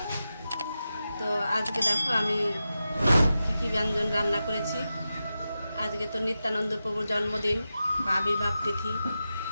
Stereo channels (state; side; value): inverted; both; correlation -0.91